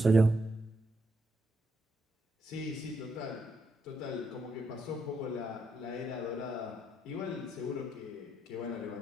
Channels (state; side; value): normal; both; correlation 0.79